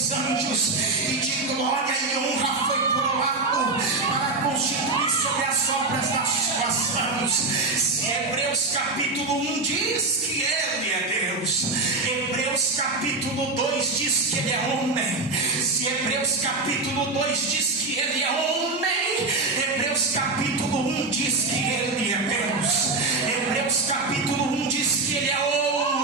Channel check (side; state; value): left; quieter; 3.5 dB